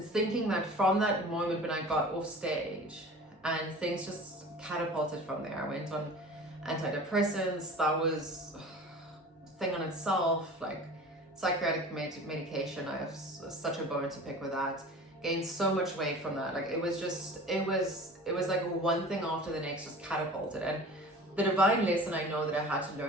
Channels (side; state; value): both; normal; correlation 0.40